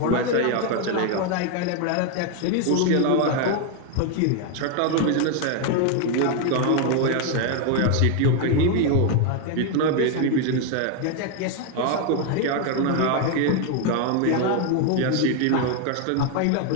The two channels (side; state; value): both; different; correlation 0.01